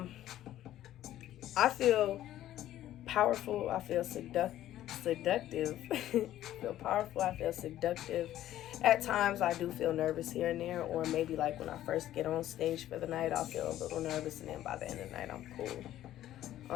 I feel powerful. I feel seductive. I feel powerful. I feel seductive. At times, I do feel nervous here and there, or maybe like when I first get on stage for the night, I'll feel a little nervous, and then by the end of the night, I'm cool.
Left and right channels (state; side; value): quieter; right; 13.0 dB